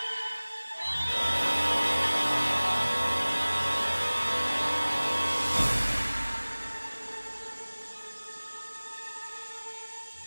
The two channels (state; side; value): inverted; both; correlation -1.00